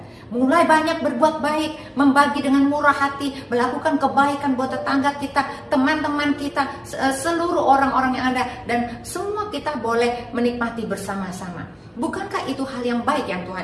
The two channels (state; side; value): identical; both; correlation 1.00